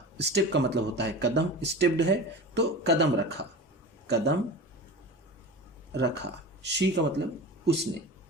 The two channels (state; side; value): normal; both; correlation 0.31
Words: स्टेप का मतलब होता है कदम, स्टेप्ड है तो कदम रखा, कदम रखा। she का मतलब उसने।